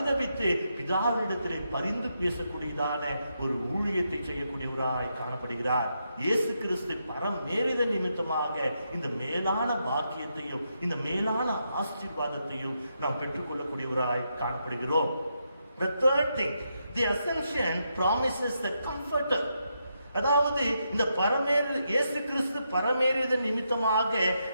பிதாவினிடத்திலே பரிந்து பேசக்கூடியதான ஒரு ஊழியத்தை செய்யக்கூடியவராய் காணப்படுகிறார். இயேசு கிறிஸ்து பரமேறித நிமித்தமாக இந்த மேலான பாக்கியத்தையும் இந்த மேலான ஆசீர்வாதத்தையும் நாம் பெற்றுக்கொள்ளக்கூடியவராய் காணப்படுகிறோம். The third thing, the ascension promises the comforter. அதாவது இந்த இயேசு கிறிஸ்து பரமேறியதன் நிமித்தமாக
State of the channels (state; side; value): inverted; both; correlation -0.82